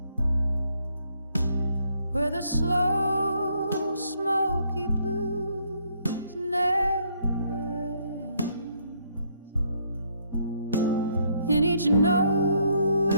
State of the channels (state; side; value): inverted; both; correlation -0.70